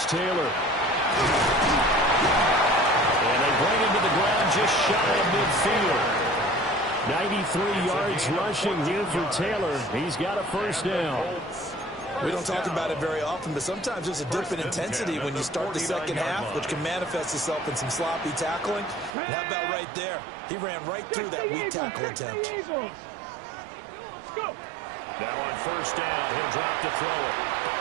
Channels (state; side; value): drops out; left; at 19.2 s